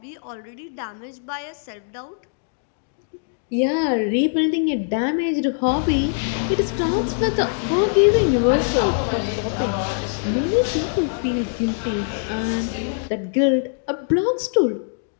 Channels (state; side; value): silent; right; digital silence